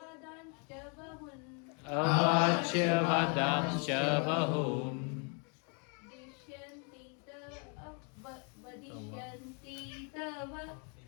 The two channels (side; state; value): right; quieter; 37.7 dB